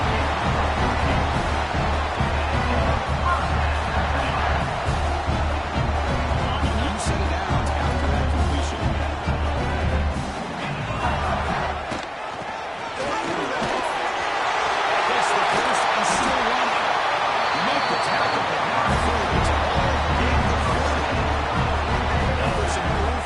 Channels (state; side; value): identical; both; correlation 1.00